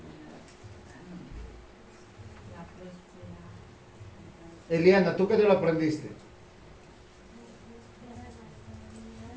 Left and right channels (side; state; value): both; identical; correlation 1.00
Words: Eliana, ¿tú qué te lo aprendiste?